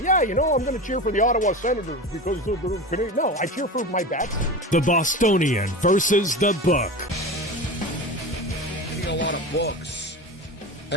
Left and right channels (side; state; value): both; normal; correlation 0.28